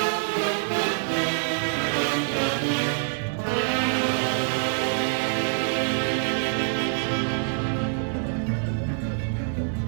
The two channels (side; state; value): left; silent; 61 dB below the other